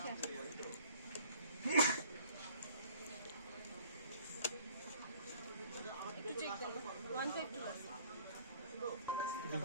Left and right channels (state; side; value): inverted; both; correlation -0.54